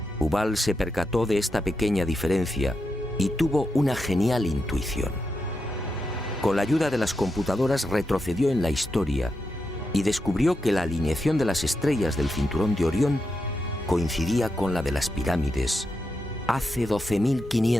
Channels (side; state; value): both; normal; correlation 0.86